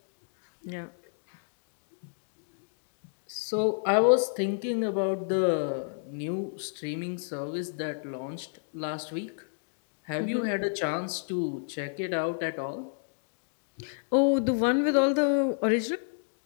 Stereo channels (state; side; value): silent; right; digital silence